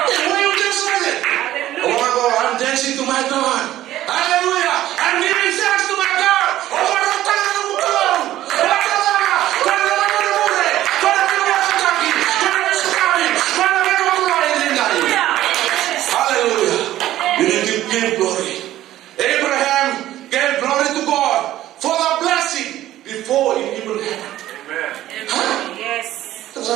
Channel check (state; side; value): quieter; left; 13.9 dB